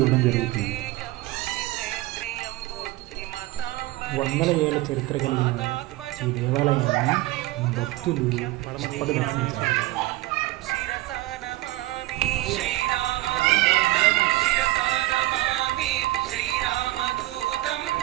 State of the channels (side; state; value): left; quieter; 18.6 dB